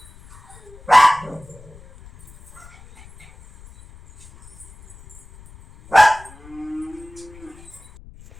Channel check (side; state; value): left; noise; rumble, 22 dB below the sound